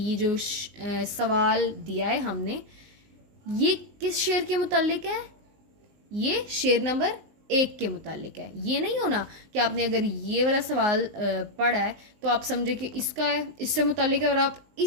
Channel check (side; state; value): left; late; 20 ms